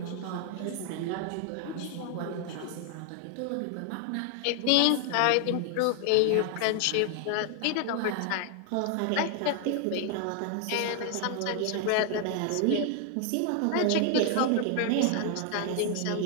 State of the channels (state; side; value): different; both; correlation 0.00